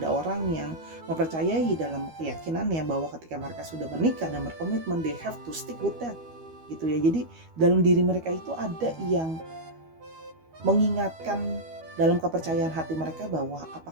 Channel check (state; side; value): late; left; 12 ms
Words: orang yang mempercayai dalam keyakinannya bahwa ketika mereka sudah menikah dan berkomitmen, they have to stick with that gitu ya. Jadi dalam diri mereka itu ada yang mengingatkan dalam kepercayaan hati mereka bahwa